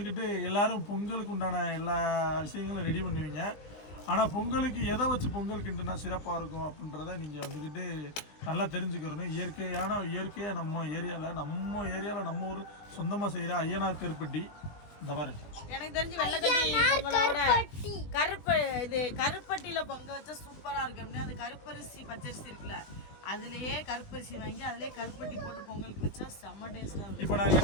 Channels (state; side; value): late; right; 20 ms